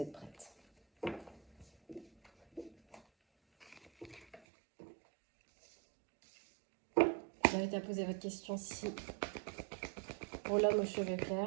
prête. Je vous invite à poser votre question si pour l'homme aux cheveux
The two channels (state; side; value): drops out; left; at 4.4 s